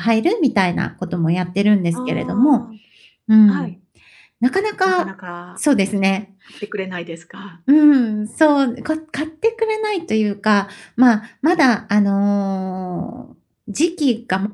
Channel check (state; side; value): identical; both; correlation 1.00